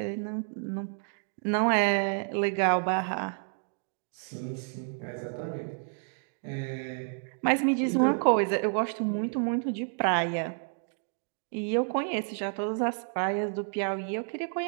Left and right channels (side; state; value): left; silent; 58 dB below the other